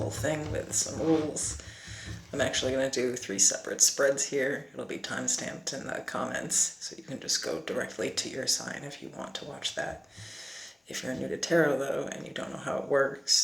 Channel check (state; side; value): normal; both; correlation 0.98